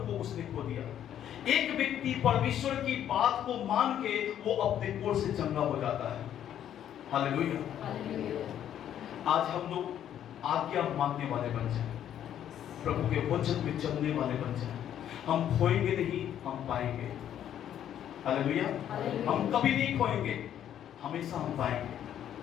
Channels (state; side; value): quieter; right; 10.4 dB